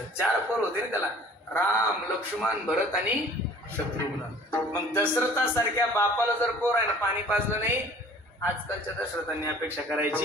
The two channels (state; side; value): normal; both; correlation 0.50